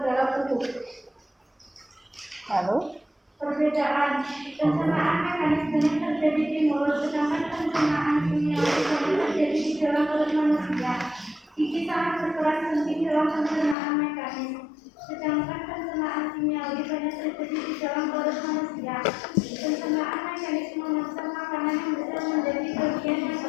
dalam tubuh. Lalu Perbedaan pencernaan mekanismenya terjadi di mulut, sedangkan pencernaan kimiawi terjadi di dalam perut manusia. Gigi sangat berperan penting dalam pencernaan mekanis, sedangkan pencernaan kimiawi banyak terjadi di dalam perut manusia. Pencernaan mekanis memaksa makanan yang besar menjadi bagian yang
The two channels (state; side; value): drops out; right; at 13.8 s